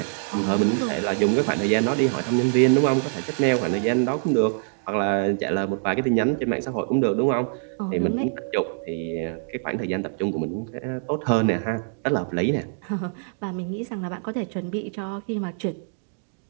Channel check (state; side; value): silent; left; digital silence